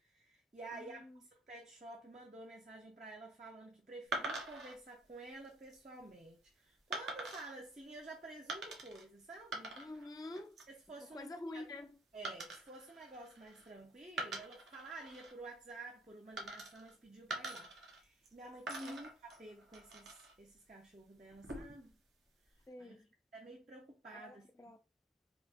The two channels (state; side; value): normal; both; correlation 0.54